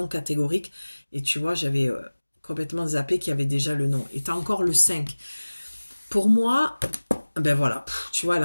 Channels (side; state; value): both; inverted; correlation -1.00